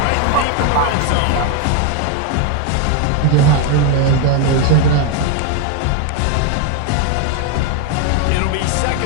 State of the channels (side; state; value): both; different; correlation 0.01